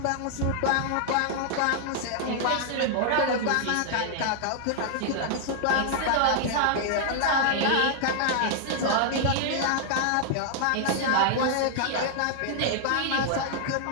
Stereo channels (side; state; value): both; different; correlation 0.00